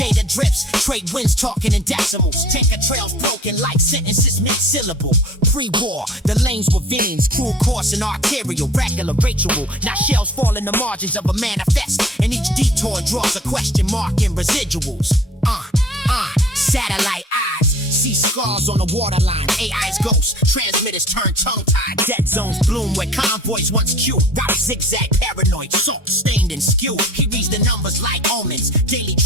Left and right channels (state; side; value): normal; both; correlation 0.48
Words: drips. Trade winds talking in decimals. Tanker trails broken like sentences mid-syllable. Pre-war, the lanes were veins. Cruel course and arterial, regular ritual. Now shells fall in the margins of a manifest, and each detour draws a question mark in residuals. Satellite eyes, see scars on the waterline. AI's ghosts, transmitters turn tongue-tied. Dead zones bloom where convoys once queued. Route zigzag, paranoid, salt stained and skewed. He reads the numbers like omens. Daily